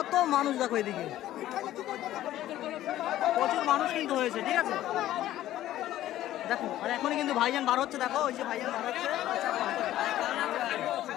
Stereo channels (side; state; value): right; quieter; 13.7 dB